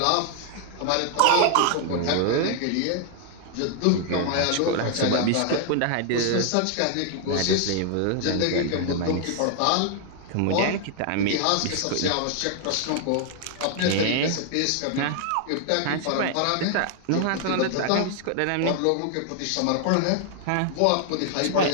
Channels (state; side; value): different; both; correlation 0.00